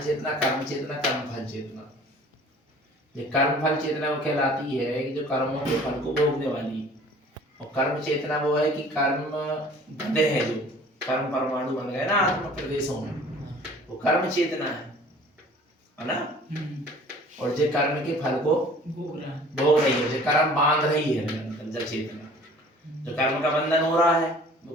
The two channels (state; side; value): normal; both; correlation 0.49